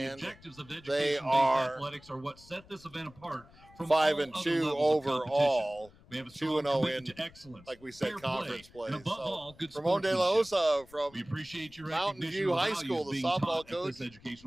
the objectives of they are athletics are what set this event apart from 5-2 overall, 2-0 in, like we said, conference play. So Ramon De La Osa from Mountain View High School, the softball coach,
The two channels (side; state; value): left; noise; rumble, 24 dB below the sound